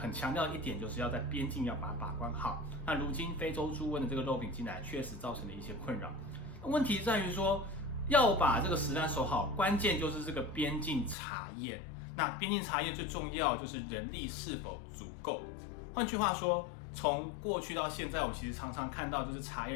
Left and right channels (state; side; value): drops out; right; at 11.2 s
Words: 强调一点就是要在边境要把它把关好。那如今非洲猪瘟的这个肉品进来，确实造成了一些困扰。问题在于说，要把这个食安守好，关键就是这个边境查验。那边境查验最重要就是人力是否足够。换句话说，从过去到现在，我们其实常常看到就是查